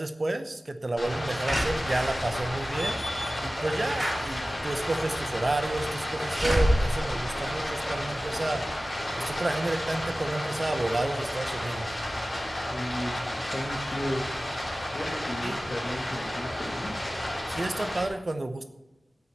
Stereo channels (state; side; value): normal; both; correlation 0.96